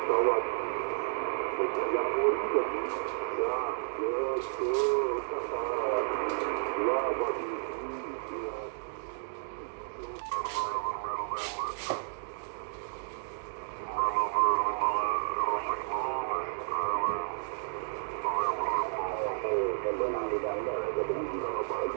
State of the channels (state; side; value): silent; left; digital silence